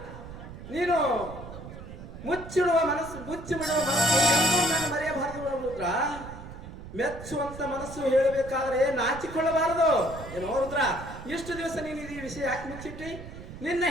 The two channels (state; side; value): noise; right; rumble, 13 dB below the sound